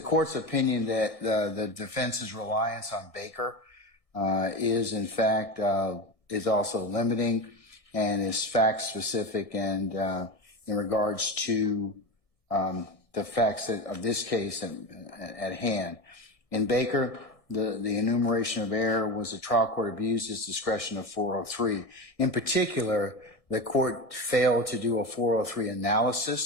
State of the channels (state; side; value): late; right; 1.6 ms